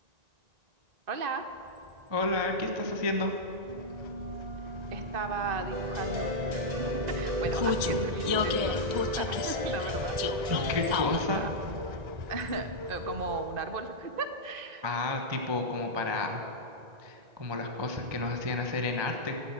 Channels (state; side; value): late; left; 1.9 ms